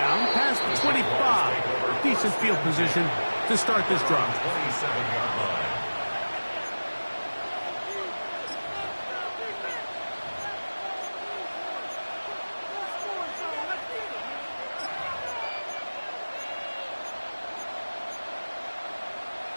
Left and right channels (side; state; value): both; inverted; correlation -1.00